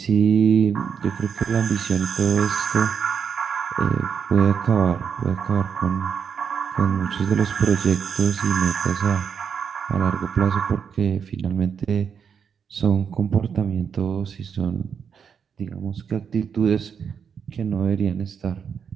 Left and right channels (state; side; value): quieter; left; 7.0 dB